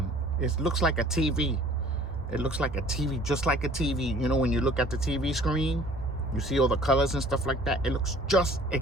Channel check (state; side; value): normal; both; correlation 0.52